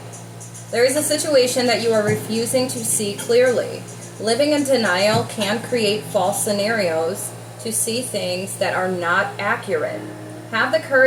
There is a situation that you are refusing to see clearly. Living in denial can create false scenarios to see things that are not accurate. Have the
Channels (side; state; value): both; identical; correlation 1.00